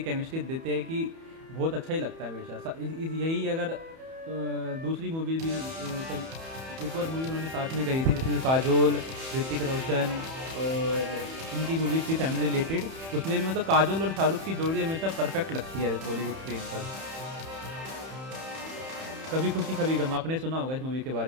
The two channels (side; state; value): left; late; 31 ms